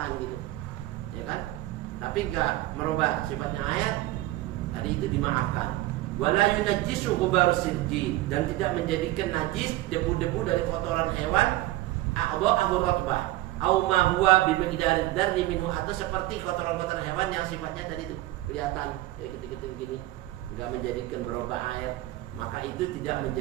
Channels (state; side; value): quieter; left; 16.9 dB